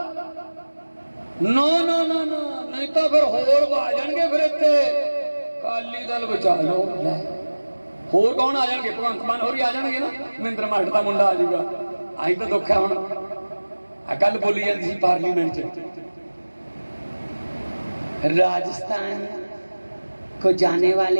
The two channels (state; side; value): inverted; both; correlation -1.00